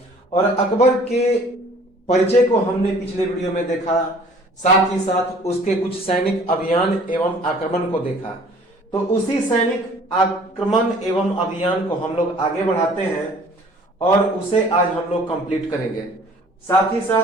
और अकबर के परिचय को हमने पिछले वीडियो में देखा। साथ ही साथ उसके कुछ सैनिक अभियान एवं आक्रमण को देखा। तो उसी सैनिक आक्रमण एवं अभियान को हम लोग आगे बढ़ाते हैं और उसे आज हम लोग कंप्लीट करेंगे। साथ ही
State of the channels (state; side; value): normal; both; correlation 0.52